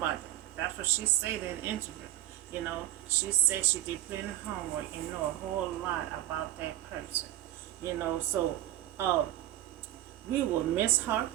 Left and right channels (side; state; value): left; quieter; 13.9 dB